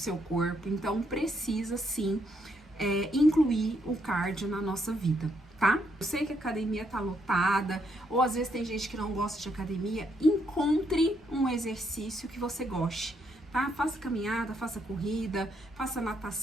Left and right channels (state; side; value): normal; both; correlation 0.75